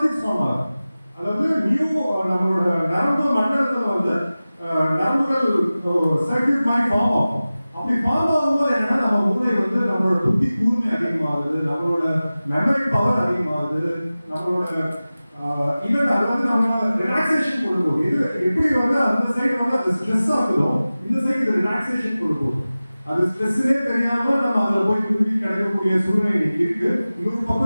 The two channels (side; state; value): both; inverted; correlation -0.97